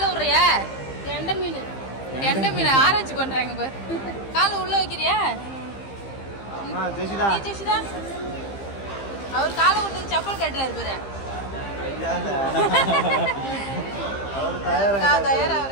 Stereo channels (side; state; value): right; late; 15 ms